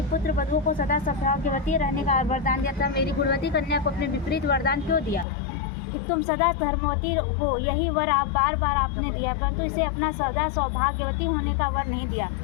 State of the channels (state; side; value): drops out; right; at 5.2 s